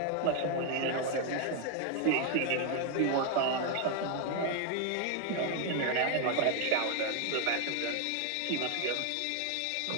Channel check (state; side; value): different; both; correlation 0.00